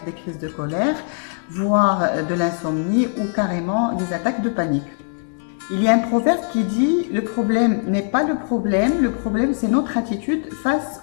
des crises de colère, voire de l'insomnie ou carrément des attaques de panique. Il y a un proverbe qui dit « Le problème n'est pas le problème c'est notre attitude face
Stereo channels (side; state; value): right; silent; 65 dB below the other